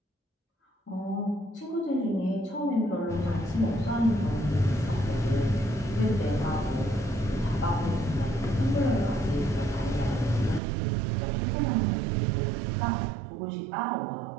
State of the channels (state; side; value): drops out; left; at 10.6 s